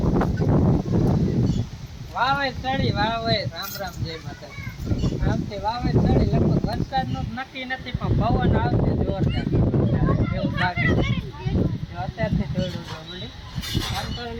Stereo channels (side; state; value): both; identical; correlation 1.00